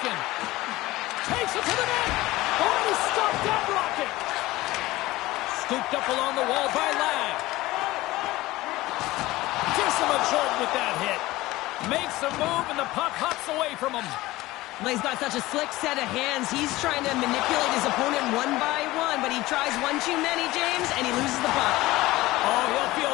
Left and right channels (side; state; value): right; quieter; 18.5 dB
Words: Takes it to the net. Oh, he stopped that rocket. Scooped up along the wall by Ladd. Gives him a jolt with that hit. Makes a move and the puck hops away from him. Well, he's got such a slick set of hands. He's trying to manipulate his opponent one by one, but he tries one too many, James, and he loses the puck. Oh, he'll